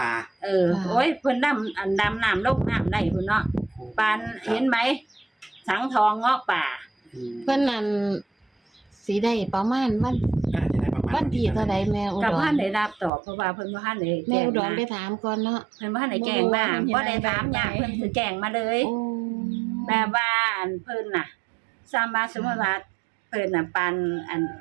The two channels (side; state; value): left; drops out; at 13.1 s